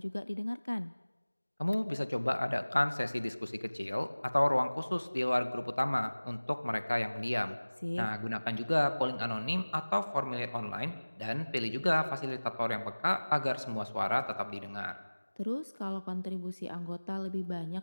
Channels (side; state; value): both; inverted; correlation -1.00